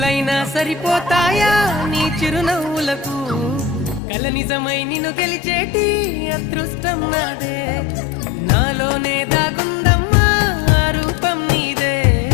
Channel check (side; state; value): right; drops out; at 4.0 s